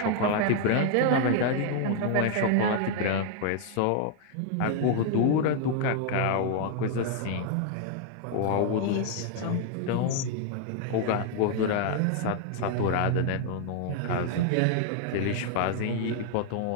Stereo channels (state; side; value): different; both; correlation 0.00